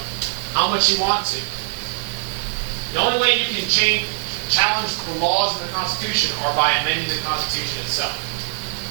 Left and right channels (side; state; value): left; silent; digital silence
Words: how much you want to. The only way you can challenge the laws of the Constitution are by amending the Constitution itself.